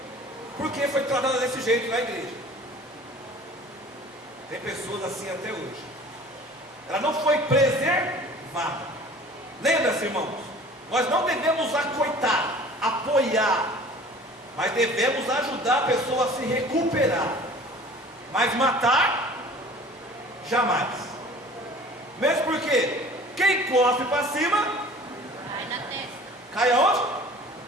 porque foi tratada desse jeito na igreja. Tem pessoas assim até hoje. Ela não foi preservada. Lembra-se, irmãos, nós não devemos acoitar, apoiar, mas devemos ajudar a pessoa a se recuperar. Mas matar, jamais. Mesmo porque quem cospe para cima, Cai na testa. cai aonde?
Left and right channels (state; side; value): normal; both; correlation 0.46